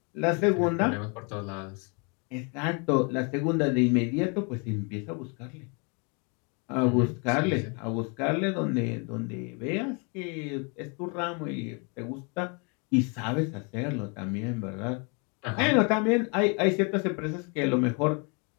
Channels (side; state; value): right; quieter; 34.0 dB